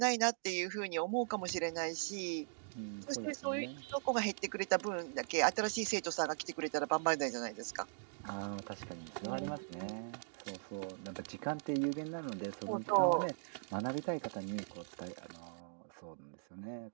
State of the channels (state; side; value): silent; left; digital silence